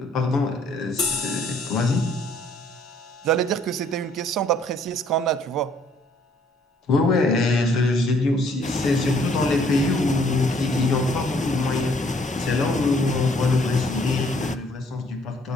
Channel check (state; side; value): normal; both; correlation 0.63